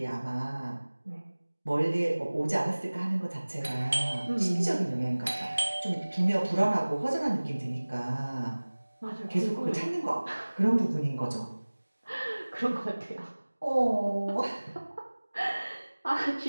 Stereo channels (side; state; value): both; inverted; correlation -1.00